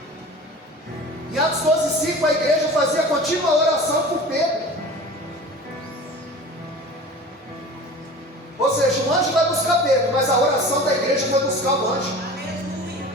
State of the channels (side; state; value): both; normal; correlation 0.38